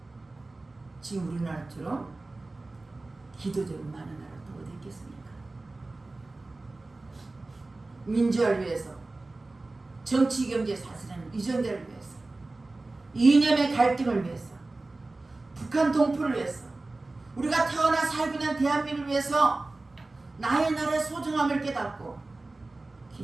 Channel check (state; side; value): quieter; left; 3.1 dB